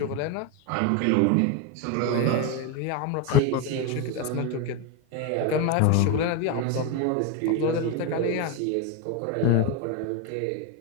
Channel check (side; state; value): both; different; correlation 0.02